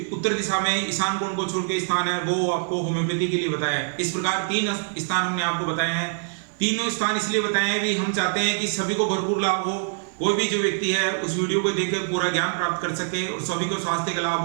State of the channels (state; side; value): silent; left; digital silence